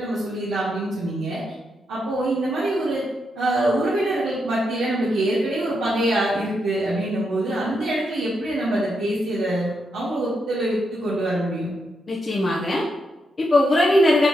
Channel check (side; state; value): both; normal; correlation 0.82